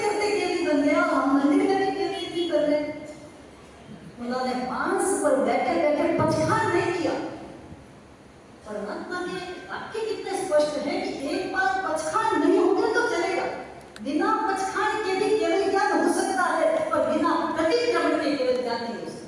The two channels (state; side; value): identical; both; correlation 1.00